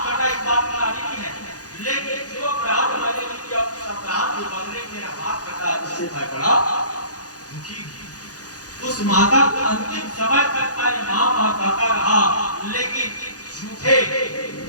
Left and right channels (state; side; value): late; right; 0.68 ms